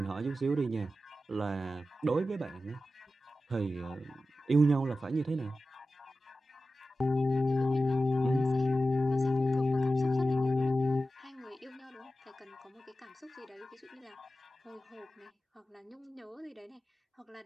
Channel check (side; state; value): both; normal; correlation 0.93